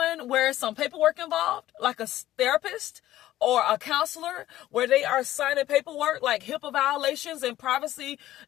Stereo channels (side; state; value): right; quieter; 14.3 dB